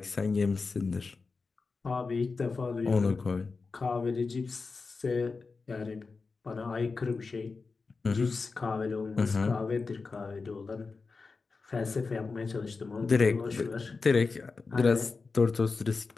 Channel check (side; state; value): right; quieter; 4.3 dB